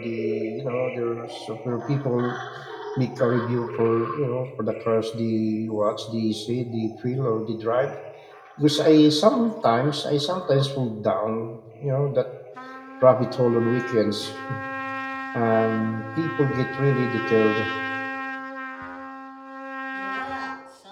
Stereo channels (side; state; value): both; identical; correlation 1.00